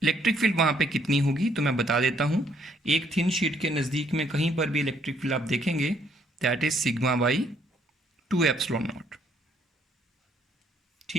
इलेक्ट्रिक फील्ड वहाँ पे कितनी होगी तो मैं बता देता हूँ। एक थिन शीट के नज़दीक में कहीं पर भी इलेक्ट्रिक फील्ड आप देखेंगे, that is sigma by 2 epsilon not.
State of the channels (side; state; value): both; normal; correlation 0.68